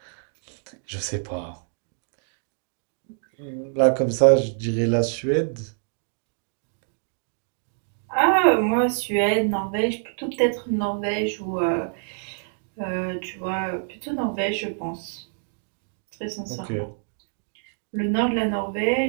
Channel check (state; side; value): silent; left; digital silence